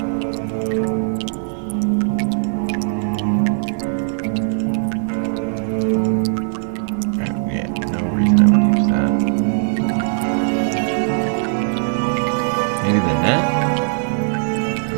Yeah, no reason I would use that. Maybe the net?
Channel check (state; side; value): silent; left; digital silence